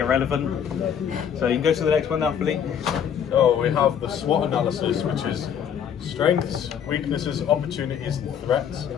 So you can go to the next one now, Philippe. So we have the SWOT analysis, which is strengths, weaknesses, opportunities, and threats.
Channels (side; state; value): right; quieter; 8.3 dB